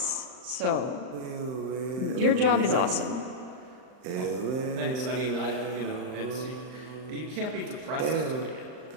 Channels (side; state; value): left; late; 39 ms